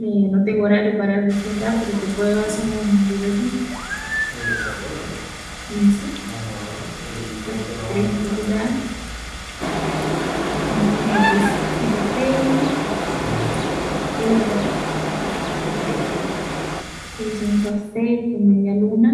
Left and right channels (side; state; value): both; identical; correlation 1.00